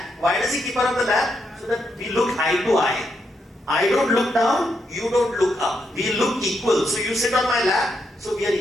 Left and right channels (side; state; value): both; normal; correlation 0.80